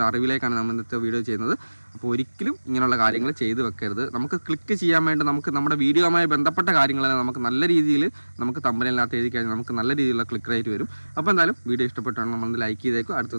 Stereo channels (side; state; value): both; inverted; correlation -1.00